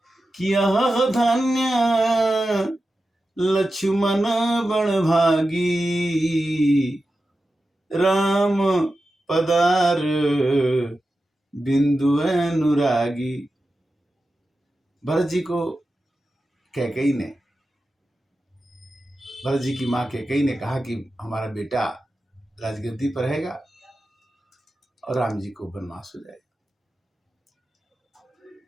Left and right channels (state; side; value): normal; both; correlation 0.92